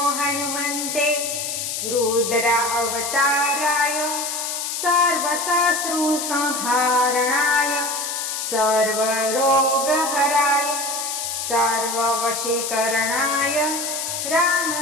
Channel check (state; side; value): noise; left; hiss, 3 dB below the sound